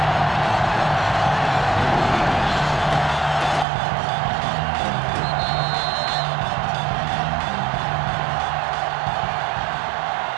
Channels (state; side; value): drops out; left; at 3.7 s